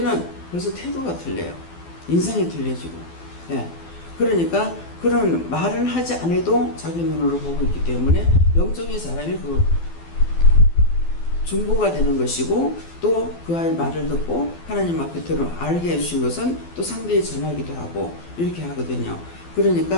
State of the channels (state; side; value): late; right; 12 ms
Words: 벌써 태도가 틀려요. 인상이 틀려지고. 예. 그러니까 그런 말을 하지 않아도 자기 눈으로 보고 있기 때문에 영적인 사람이 그 중보가 되는 것이고 또 그 아이의 말을 듣고 하나님 앞에 들어 알게 해주신 것은 또 상대에 전하기도 하고 이렇게 하거든요.